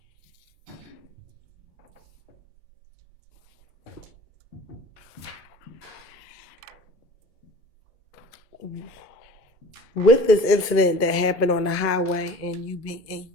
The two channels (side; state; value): both; normal; correlation 0.43